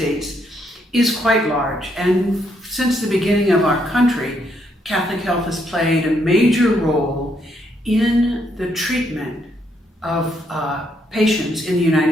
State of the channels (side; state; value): both; normal; correlation 0.74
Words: is quite large, and since the beginning of our country, Catholic Health has played a major role in the treatment of patients in the